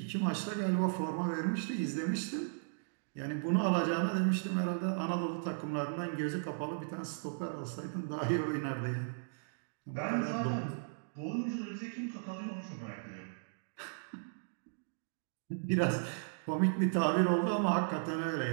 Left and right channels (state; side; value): silent; left; digital silence